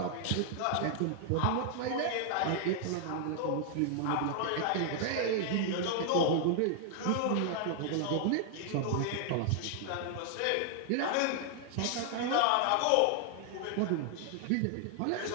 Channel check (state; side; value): different; both; correlation 0.00